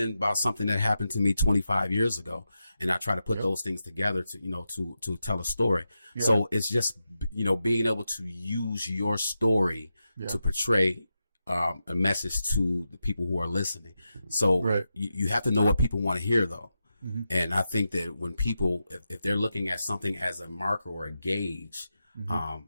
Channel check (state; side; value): inverted; both; correlation -0.89